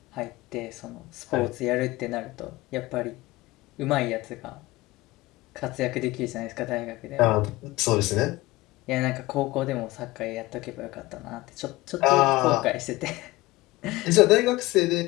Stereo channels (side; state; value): right; quieter; 19.6 dB